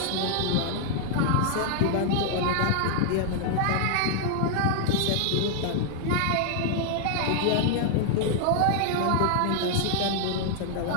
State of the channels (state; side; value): different; both; correlation 0.00